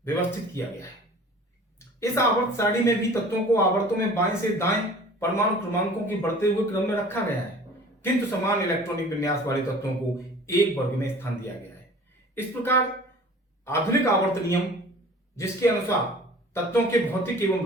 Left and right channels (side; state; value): both; normal; correlation 0.45